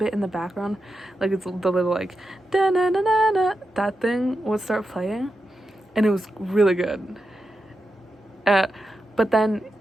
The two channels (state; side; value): normal; both; correlation 0.88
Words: in the background. Like, it's the little, like, da-na-na-na-na, that thing would start playing. And it was really good. But then